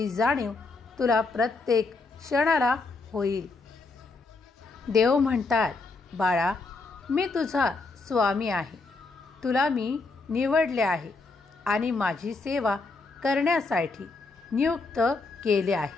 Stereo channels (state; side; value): quieter; right; 3.7 dB